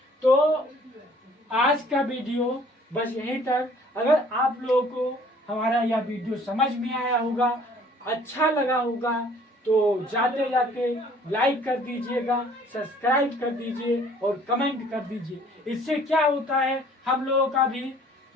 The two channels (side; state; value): both; normal; correlation 0.56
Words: तो आज का वीडियो बस यहीं तक। अगर आप लोगों को हमारा यह वीडियो समझ में आया होगा, अच्छा लगा होगा, तो जाते जाते लाइक कर दीजिएगा, सब्सक्राइब कर दीजिए और कमेंट कर दीजिए। इससे क्या होता है, हम लोगों का भी